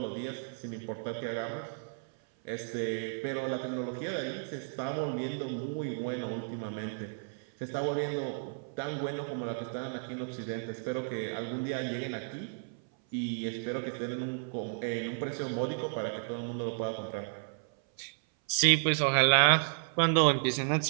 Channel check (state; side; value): silent; left; 56 dB below the other